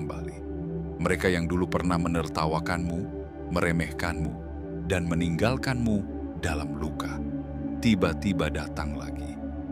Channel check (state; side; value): identical; both; correlation 1.00